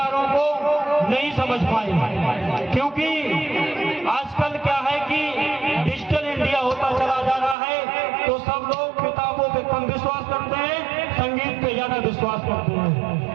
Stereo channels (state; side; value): drops out; left; at 7.6 s